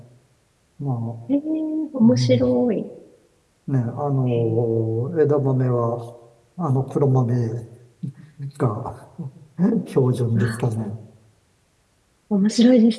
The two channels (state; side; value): identical; both; correlation 1.00